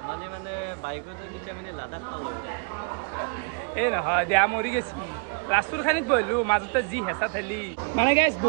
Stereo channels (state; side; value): quieter; left; 38.3 dB